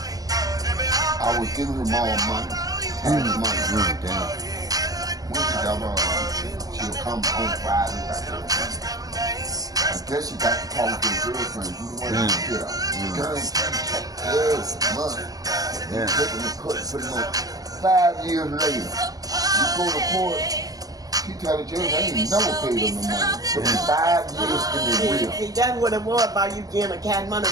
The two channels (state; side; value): late; left; 0.18 ms